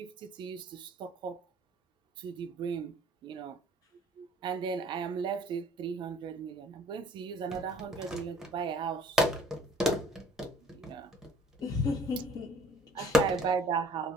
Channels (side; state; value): both; normal; correlation 0.54